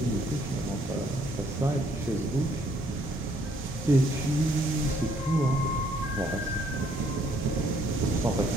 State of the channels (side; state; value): both; normal; correlation 0.66